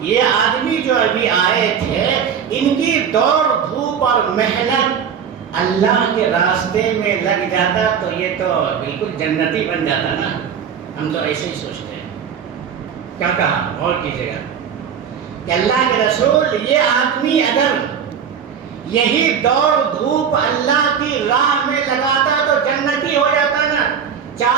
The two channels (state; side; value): quieter; left; 7.5 dB